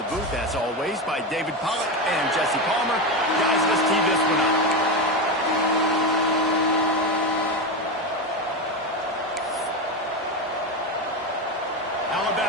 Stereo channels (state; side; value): normal; both; correlation 0.15